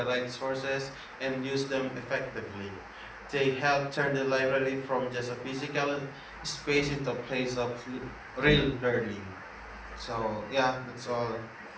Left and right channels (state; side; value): identical; both; correlation 1.00